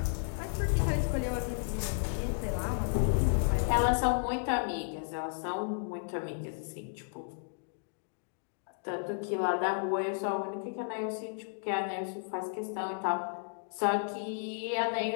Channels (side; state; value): right; silent; digital silence